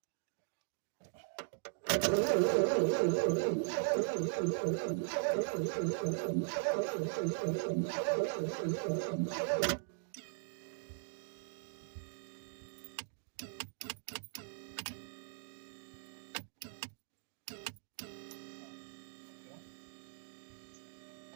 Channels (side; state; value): left; silent; digital silence